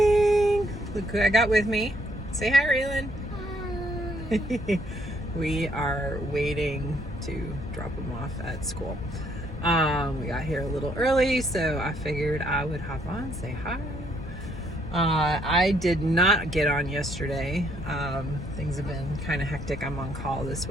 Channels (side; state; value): both; normal; correlation 0.69